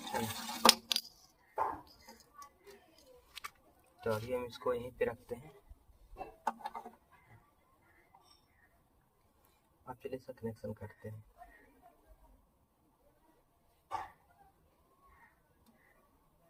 तो अभी हम इसको यहीं पे रखते हैं। अब चलिए इसका कनेक्शन करते हैं।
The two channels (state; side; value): identical; both; correlation 1.00